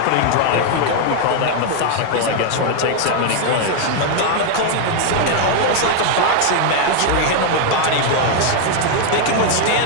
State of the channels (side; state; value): both; different; correlation 0.00